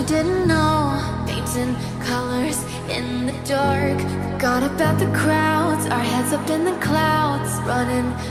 didn't know. Painting colors in the dark, forgot about the crowds, our heads up in the clouds, running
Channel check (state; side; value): identical; both; correlation 1.00